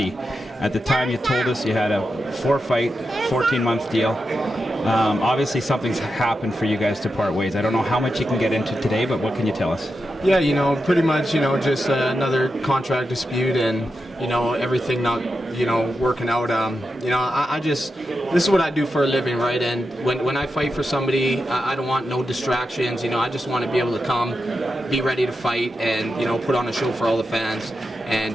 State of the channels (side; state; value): both; normal; correlation 0.88